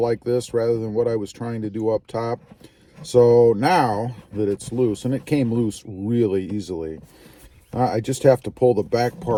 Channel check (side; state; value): both; identical; correlation 1.00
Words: this rather than what I was trying to do up top. So now that it's loose, and it came loose really easily, I just have to pull the back